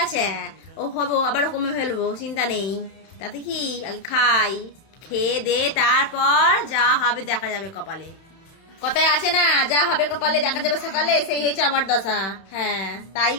আছে, ও হবো আবার কমে ফেলবো, চিন্তা নেই, তাতে কি, আগে খাই, খেয়ে দে তারপর যা হবে দেখা যাবে কপালে, কথায় আছে না, যা হবে কপালে দেখা যাবে সকালে, সেই হয়েছে আমার দশা। হ্যাঁ, তাই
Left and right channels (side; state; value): right; late; 31 ms